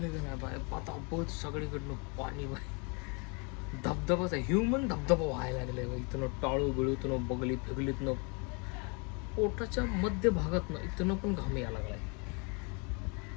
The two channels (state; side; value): quieter; right; 33.3 dB